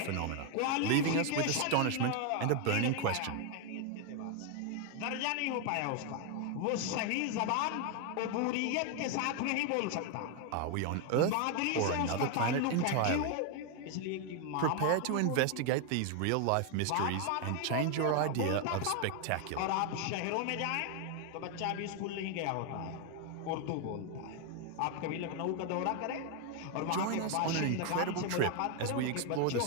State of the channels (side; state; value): both; different; correlation 0.01